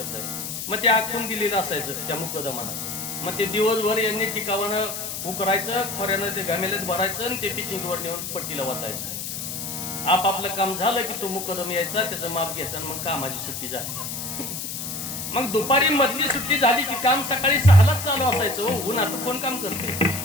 आहे. मग ते आखून दिलेलं असायचं त्या मुकदमानं. मग ते दिवसभर यांनी टिकावानं उकरायचं, खोऱ्यानं ते घामेल्यात भरायचं आणि ते पिचिंगवर नेऊन पट्टीला वाटायचं. आपापलं काम झालं की तो मुकदम यायचा, त्याचं माप घ्यायचं आणि मग कामाची सुट्टी झाली. मग दुपारी मधली सुट्टी झाली की काम सकाळी 6लाच चालू असायचं. उन्हात कोण काम करते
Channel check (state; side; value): noise; left; hiss, 6 dB below the sound